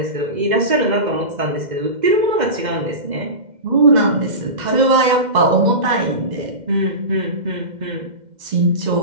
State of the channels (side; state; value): left; late; 2.1 ms